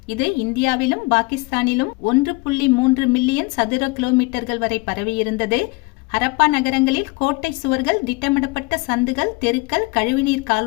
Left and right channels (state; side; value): quieter; right; 26.1 dB